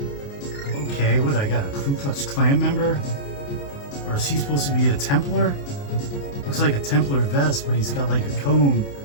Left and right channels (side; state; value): right; late; 28 ms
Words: Okay, what, I got a Ku Klux Klan member? Or is he supposed to be a Templar? Looks like a Templar vest, but he's got like a cone,